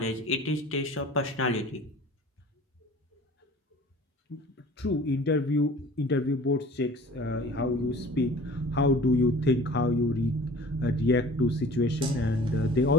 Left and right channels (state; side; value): normal; both; correlation 0.46